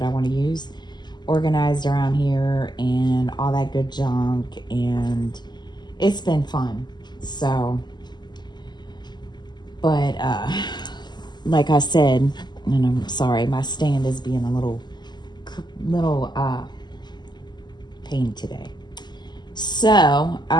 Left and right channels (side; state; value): right; late; 0.21 ms